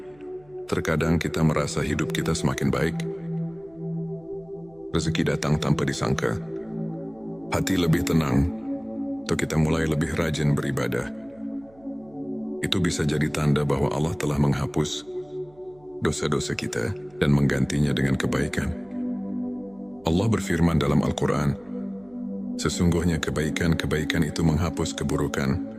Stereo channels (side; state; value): right; noise; hum, 28 dB below the sound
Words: Terkadang kita merasa hidup kita semakin baik. Rezeki datang tanpa disangka. Hati lebih tenang, atau kita mulai lebih rajin beribadah. Itu bisa jadi tanda bahwa Allah telah menghapus dosa-dosa kita dan menggantinya dengan kebaikan. Allah berfirman dalam Al-Quran, sesungguhnya kebaikan-kebaikan itu menghapus keburukan.